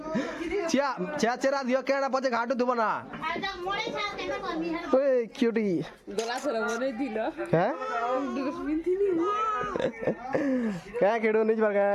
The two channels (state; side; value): identical; both; correlation 1.00